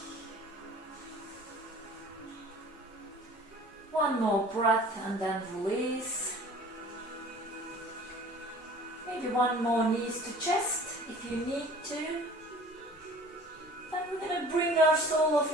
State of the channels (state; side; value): normal; both; correlation 0.47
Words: One more breath and then release. Maybe one more knees to chest if you need to. Then we're going to bring our sole of